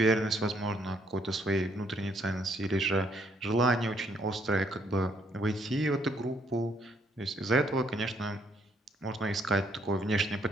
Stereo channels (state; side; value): normal; both; correlation 0.69